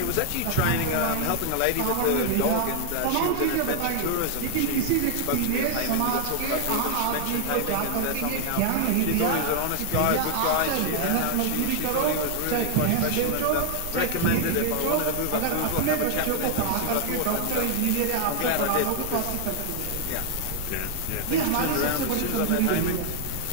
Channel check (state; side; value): different; both; correlation 0.00